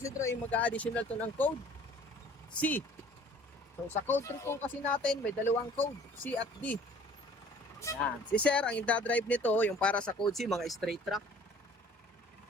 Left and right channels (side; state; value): both; normal; correlation 0.52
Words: ay mag-additional to ng code C. So sa code 3 po kasi natin, may dalawang code, C at D. Yan. Si Sir, ang i-drive nito, yung para sa code C, mga straight track.